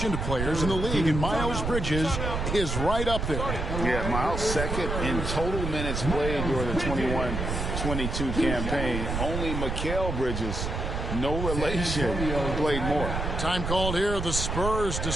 players in the league, and Miles Bridges is right up there. Yeah, Miles second in total minutes played during the 21-22 campaign. Only Mikal Bridges, no relation, played more. Time called here. The Spurs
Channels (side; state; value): right; noise; rumble, 3 dB below the sound